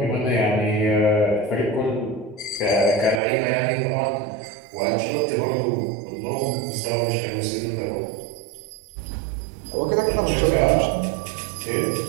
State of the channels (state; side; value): drops out; left; at 3.2 s